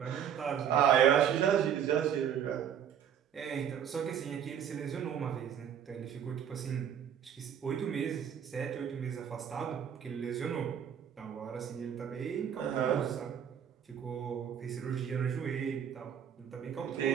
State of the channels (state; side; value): quieter; left; 8.7 dB